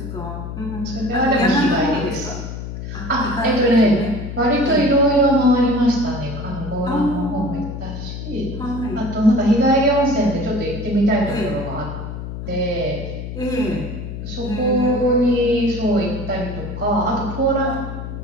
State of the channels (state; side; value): noise; left; hum, 8 dB below the sound